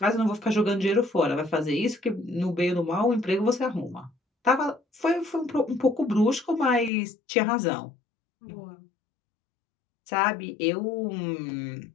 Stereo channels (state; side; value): drops out; right; at 6.9 s